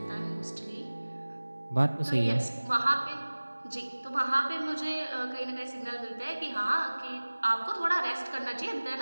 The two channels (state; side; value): inverted; both; correlation -1.00